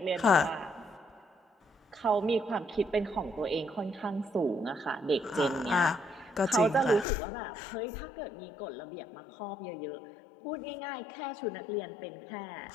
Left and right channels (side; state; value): right; drops out; at 7.1 s